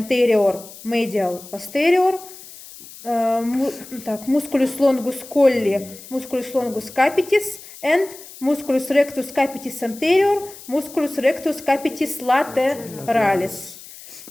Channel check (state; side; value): noise; left; hiss, 17 dB below the sound